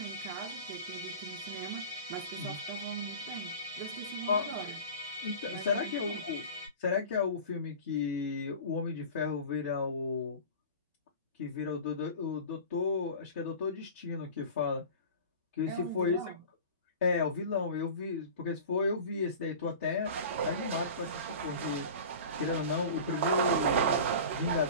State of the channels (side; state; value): both; inverted; correlation -0.36